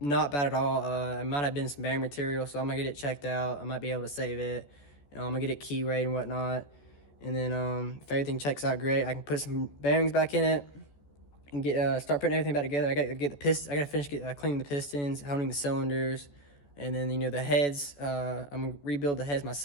not bad at all. It might have been some bearing material, so I'm gonna get it checked out. I might be able to save it. I'm gonna get it key weighed and whatnot, and then if everything checks out great, I can put some bearings back in it and start putting everything back together. I gotta get the piston. I gotta finish cleaning the pistons, honing the cylinders, and then you know the heads. I'm gonna rebuild the heads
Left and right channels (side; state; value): right; late; 14 ms